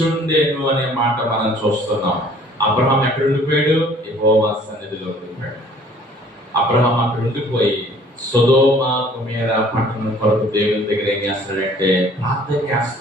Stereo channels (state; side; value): normal; both; correlation 0.55